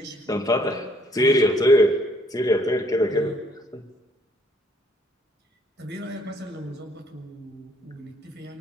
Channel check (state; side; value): normal; both; correlation 0.65